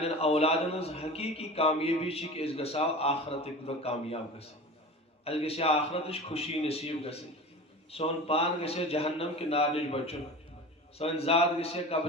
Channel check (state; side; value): normal; both; correlation 0.34